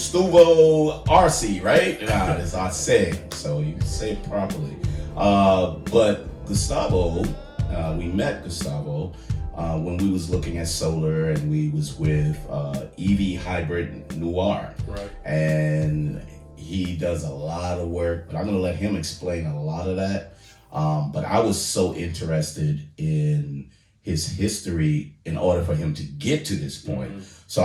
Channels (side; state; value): both; identical; correlation 1.00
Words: Arce, right? Nah, it's Arce, so you can say it properly. But Gustavo, we met Gustavo when we was looking at solar, and we was with EV Hybrid Noir. Right. And he does a lot of work, but I'm going to let him explain a lot of that. But I was so interested in his history in order for him to get to this point. Mm-hmm. So